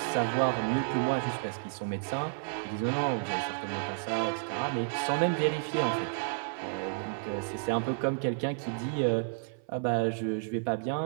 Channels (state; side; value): silent; left; 55 dB below the other